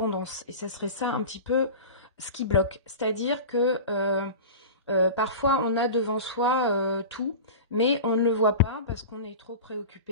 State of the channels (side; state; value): both; inverted; correlation -0.31